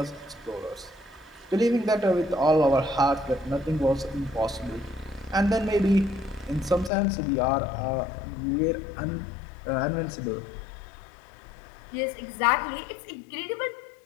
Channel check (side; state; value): right; drops out; at 6.9 s